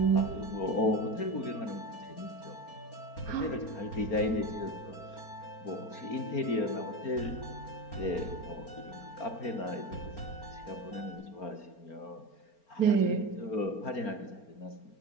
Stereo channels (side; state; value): right; late; 4.4 ms